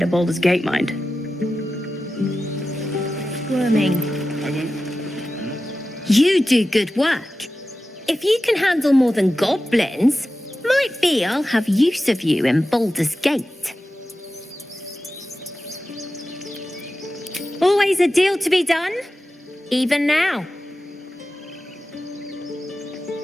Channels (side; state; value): both; normal; correlation 0.94